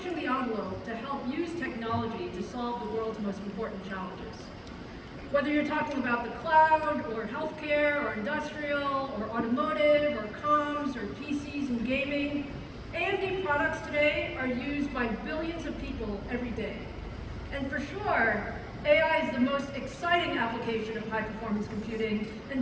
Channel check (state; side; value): identical; both; correlation 1.00